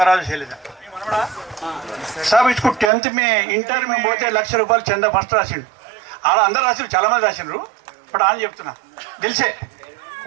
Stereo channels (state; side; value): drops out; left; at 2.9 s